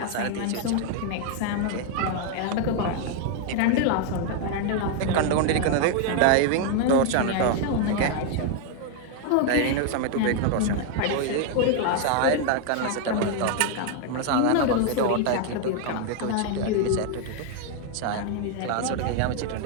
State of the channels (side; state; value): both; different; correlation 0.00